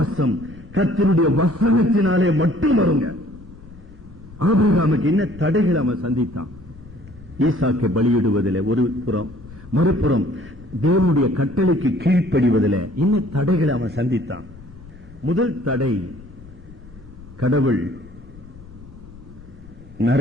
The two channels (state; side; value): noise; left; rumble, 20 dB below the sound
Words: கர்த்தருடைய வசனத்தினாலே மட்டும் வருங்க. ஆபிரகாமுக்கு என்ன தடைகள் அவன் சந்தித்தான்? ஈசாக்கை பலியிடுவதில் ஒரு புறம், மறுபுறம் தேவனுடைய கட்டளைக்கு கீழ்ப்படிவதில் என்ன தடைகளை அவன் சந்தித்தான்? முதல் தடை, கடவுள்